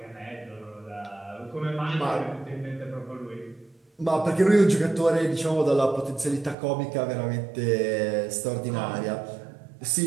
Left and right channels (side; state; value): left; drops out; at 6.6 s